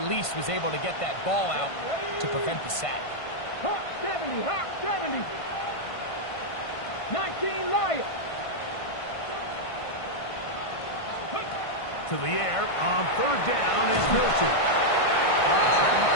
was able to get that ball out to prevent the sack. Hawk 70, Hawk 70. 19 Lions. To the air on third down is Milton.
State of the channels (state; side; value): late; right; 1.5 ms